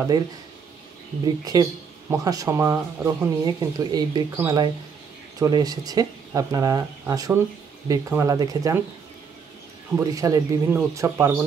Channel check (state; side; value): quieter; left; 6.1 dB